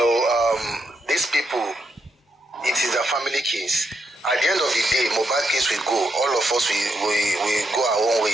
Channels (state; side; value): normal; both; correlation 0.80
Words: these people, it is a family case. At the end of the day, Mohbad case will go. All of us we go our own